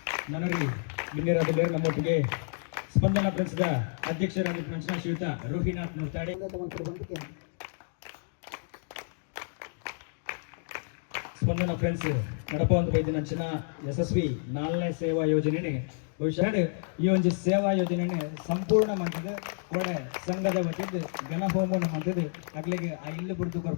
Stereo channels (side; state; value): right; silent; digital silence